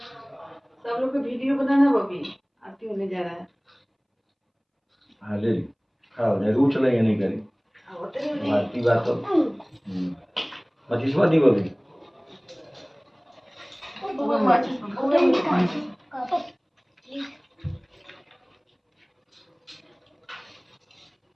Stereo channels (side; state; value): both; identical; correlation 1.00